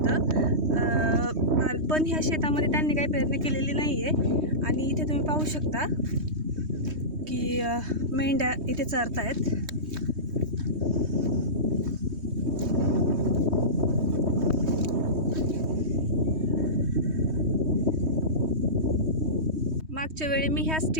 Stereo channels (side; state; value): left; late; 3.2 ms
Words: पण ह्या शेतामध्ये त्यांनी काही पेरणी केलेली नाही आहे. आणि इथे तुम्ही पाहू शकता की मेंढ्या इथे चरतायत. मागच्या वेळी मी ह्याच